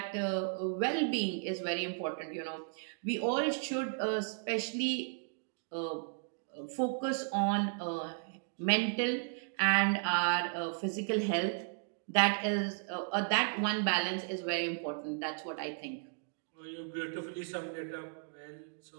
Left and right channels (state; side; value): silent; left; digital silence